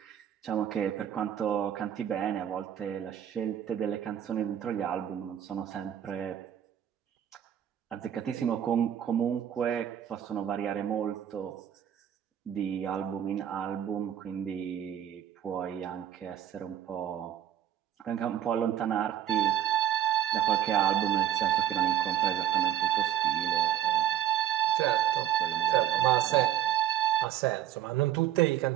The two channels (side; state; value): left; quieter; 10.7 dB